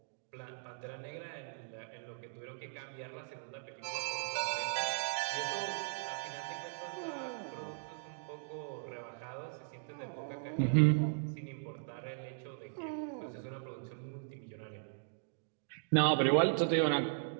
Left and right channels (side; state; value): left; silent; digital silence